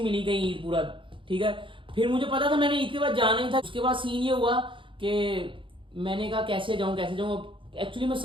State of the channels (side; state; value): left; late; 0.25 ms